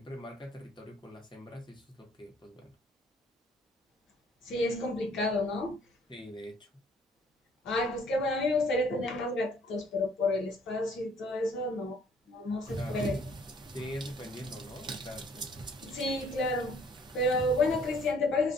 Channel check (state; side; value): normal; both; correlation 0.60